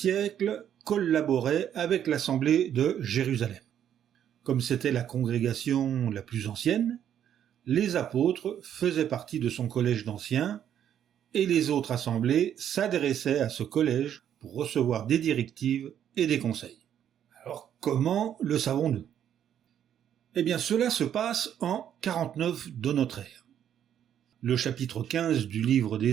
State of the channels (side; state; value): left; quieter; 9.8 dB